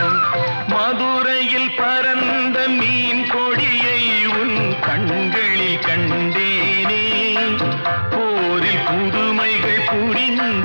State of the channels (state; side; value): inverted; both; correlation -1.00